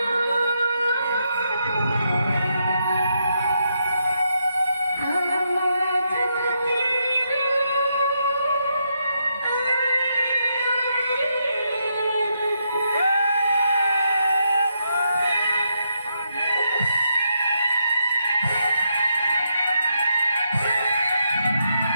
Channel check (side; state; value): both; inverted; correlation -0.80